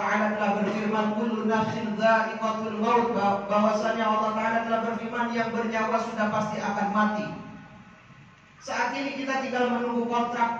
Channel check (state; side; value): identical; both; correlation 1.00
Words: telah berfirman kullu nafsin dha'iqatul maut, bahwasanya Allah Ta'ala telah berfirman yang bernyawa sudah pasti akan mati. Saat ini kita tinggal menunggu